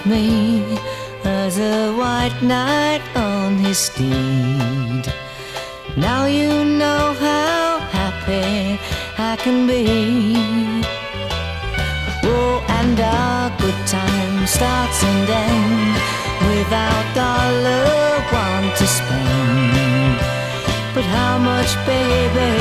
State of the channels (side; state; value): both; identical; correlation 1.00